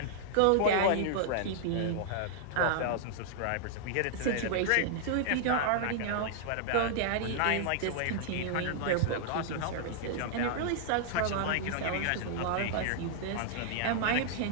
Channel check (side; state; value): both; different; correlation -0.01